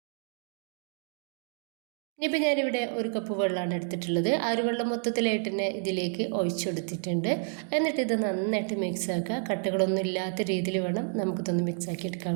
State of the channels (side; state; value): left; silent; 56 dB below the other